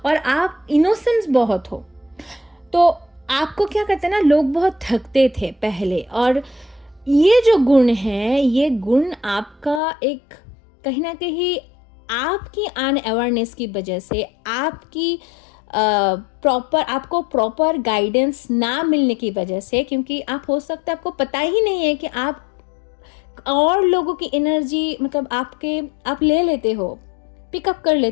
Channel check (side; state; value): right; drops out; at 9.8 s